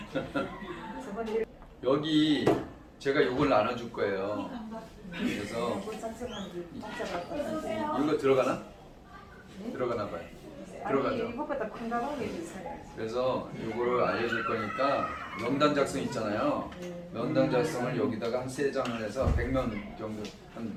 저번에 여기 제가 요걸 나눠줄 거예요. 그래서 이거 들어가나? 들어가나 봐요. 들어가죠. 이것보다 큰 가방이 비싸요. 그래서 요거를 알려줄 거니까 명단 작성 있잖아요. 명단 작성을 여기다가 한 3장을 해서 100명 정도 한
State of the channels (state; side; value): identical; both; correlation 1.00